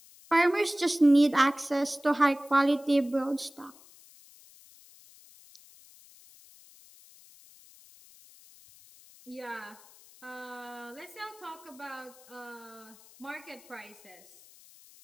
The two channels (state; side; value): noise; left; hiss, 24 dB below the sound